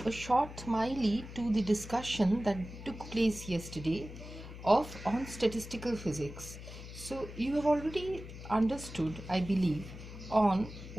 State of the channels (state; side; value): noise; left; hum, 12 dB below the sound